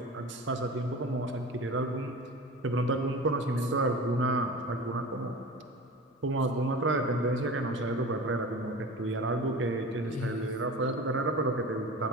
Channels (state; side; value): normal; both; correlation 0.35